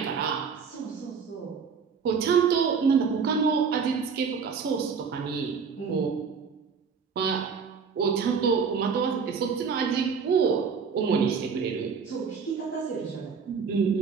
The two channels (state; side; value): quieter; left; 6.0 dB